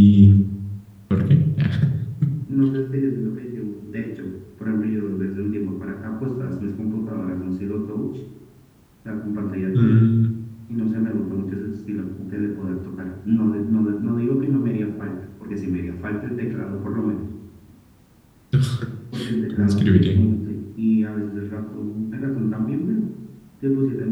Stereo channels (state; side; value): identical; both; correlation 1.00